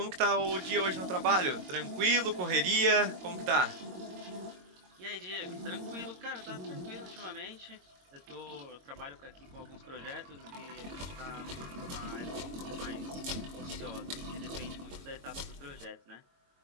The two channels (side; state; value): left; late; 22 ms